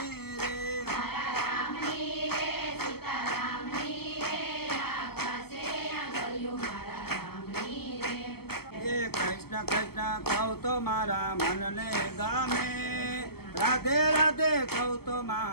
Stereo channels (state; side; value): late; right; 0.96 ms